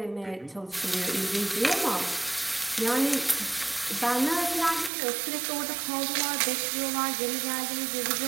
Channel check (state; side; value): drops out; left; at 4.9 s